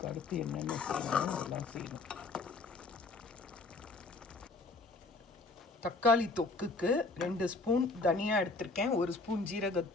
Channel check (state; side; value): quieter; right; 3.6 dB